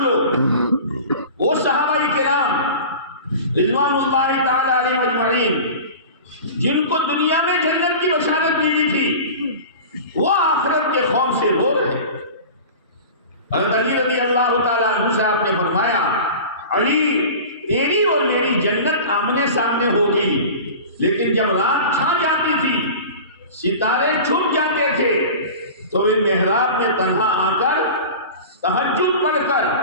وہ صحابہ کرام رضوان اللہ تعالی علیہ اجمعین جن کو دنیا میں جنت کی بشارت ملی تھی، وہ آخرت کے خوف سے رو رہے ہیں۔ حضرت علی رضی اللہ تعالیٰ عنہ سے آپ نے فرمایا علی تیری اور میری جنت آمنے سامنے ہوگی، لیکن جب رات چھا جاتی تھی، ستارے چھپ جاتے تھے، تو وہ محراب میں تنہا آ کر تہجد پڑھ کر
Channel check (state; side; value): inverted; both; correlation -0.36